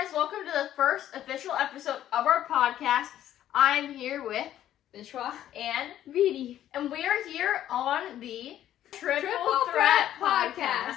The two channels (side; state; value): right; quieter; 11.9 dB